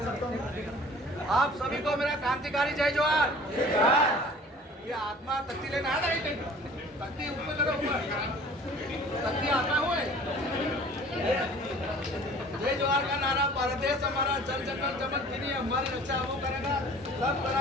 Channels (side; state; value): both; normal; correlation 0.47